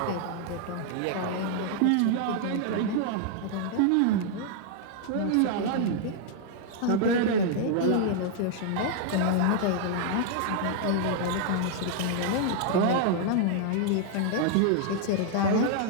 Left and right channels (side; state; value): both; different; correlation -0.01